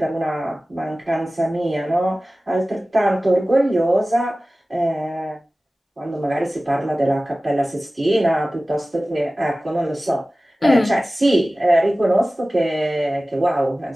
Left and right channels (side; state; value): both; normal; correlation 0.97